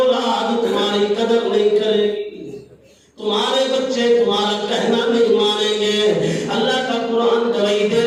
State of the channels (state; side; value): identical; both; correlation 1.00